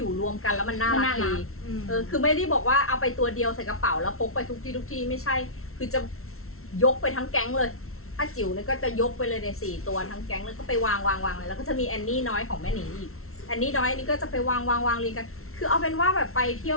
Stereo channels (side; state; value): right; late; 0.62 ms